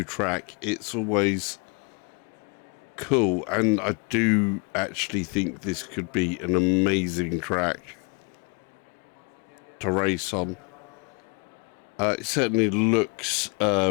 track. It's always cool, and I do actually think this could be an amazing track to race on. It certainly looks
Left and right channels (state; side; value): quieter; right; 35.0 dB